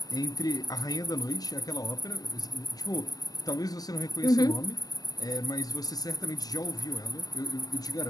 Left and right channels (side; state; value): right; late; 0.18 ms